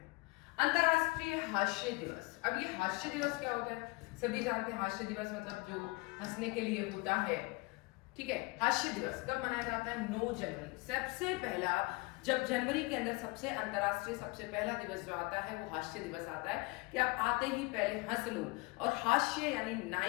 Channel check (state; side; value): quieter; right; 25.8 dB